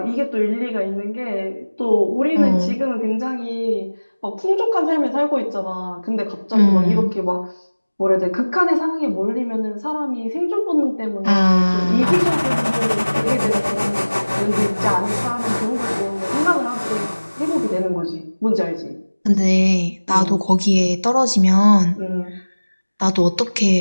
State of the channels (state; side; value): inverted; both; correlation -1.00